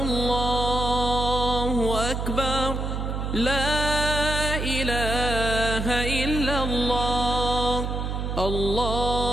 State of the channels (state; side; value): noise; right; hum, 2 dB below the sound